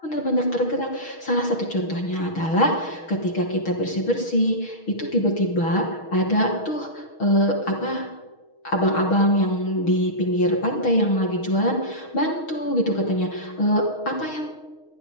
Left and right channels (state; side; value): late; right; 6.3 ms